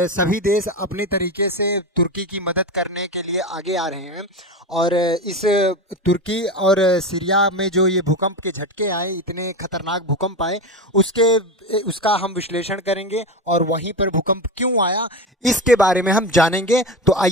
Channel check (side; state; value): both; normal; correlation 0.21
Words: सभी देश अपने तरीके से तुर्की की मदद करने के लिए आगे आ रहे हैं। और इस तुर्की और सीरिया में जो ये भूकंप के झटके आए, इतने खतरनाक भूकंप आए, उसका हम विश्लेषण करेंगे और वहीं पर भूकंप क्यों आया इसके बारे में हम जानेंगे। तो